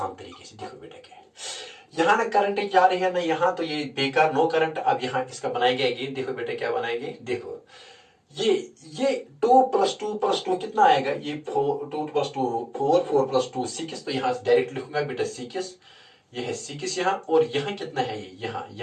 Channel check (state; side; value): identical; both; correlation 1.00